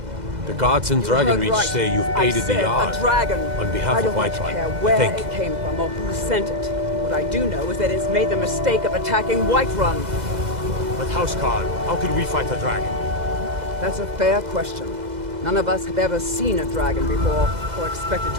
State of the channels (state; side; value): late; left; 2.0 ms